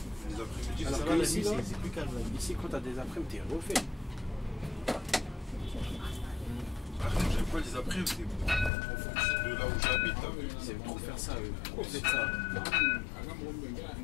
Les après-midi, Ah, Alors ça que va, la ici, nuit, là, c'est plus calme. Là. Ici, quand t'as des après-midi, t'es refait. Par contre, j'aime pas les après-midi, c'est en fonction de là où j'habite. T'as vu? Ils aiment trop faire ça, eux. Trop fait ça.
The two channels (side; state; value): right; drops out; at 8.7 s